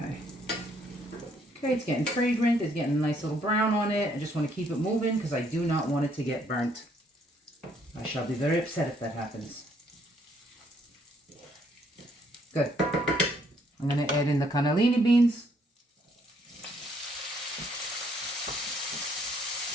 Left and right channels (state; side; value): normal; both; correlation 0.68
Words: Okay, it's getting fragrant. It's getting a nice little brown on it. I just want to keep it moving because I do not want it to get burnt. I shall be very upset if that happens. Good. I'm going to add in the cannellini beans.